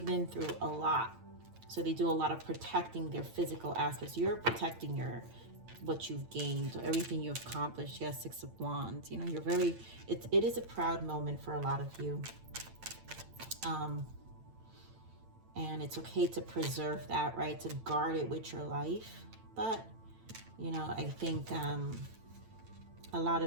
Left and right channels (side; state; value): left; late; 8.9 ms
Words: been through a lot. So they do a lot of protecting their physical aspects. You're protecting what you've gained, everything you've accomplished. Yes, 6 of Wands. You know, you're very, it is a proud moment for a lot of you. And it's okay to preserve that, right? To guard it with your life. But, you know, I think a lot